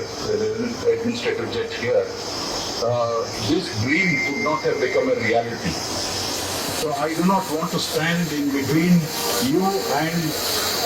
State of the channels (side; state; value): both; identical; correlation 1.00